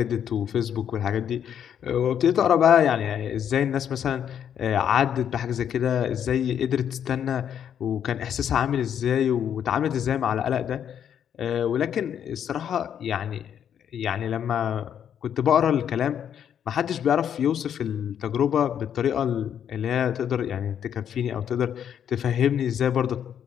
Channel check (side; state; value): right; quieter; 9.0 dB